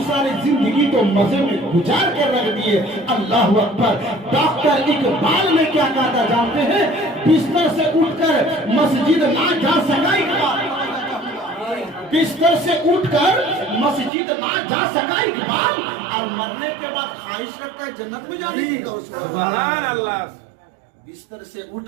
सारी जिंदगी तो मजे में गुजार कर रख दिए। अल्लाह अकबर। डॉक्टर इकबाल ने क्या कहा था जानते हैं? बिस्तर से उठकर मस्जिद ना जा सका इकबाल, बिस्तर से उठकर मस्जिद ना जा सका इकबाल, और मरने के बाद ख्वाहिश रखता है जन्नत में जाने की। सुभान अल्लाह। बिस्तर से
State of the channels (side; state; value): left; drops out; at 14.1 s